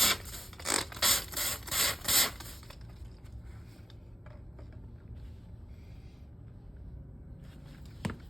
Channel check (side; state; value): both; normal; correlation 0.92